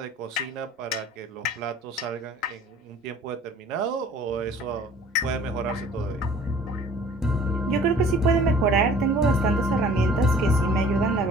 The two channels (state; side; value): normal; both; correlation 0.50